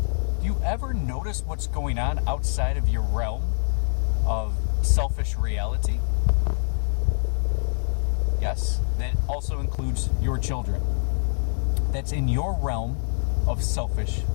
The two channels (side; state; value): right; silent; digital silence